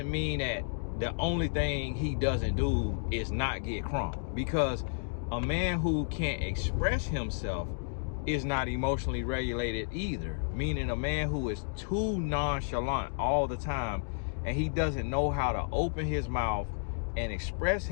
mean that the only thing he doesn't do is not get crunk. Because a man who can't express himself is not emotionally regulated either. Meaning a man who is too nonchalant all the time and he doesn't know how to open his mouth and express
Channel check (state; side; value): silent; right; digital silence